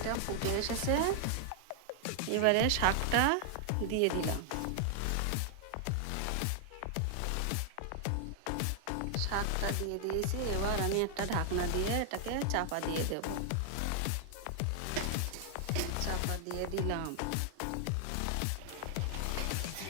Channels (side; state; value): both; different; correlation 0.00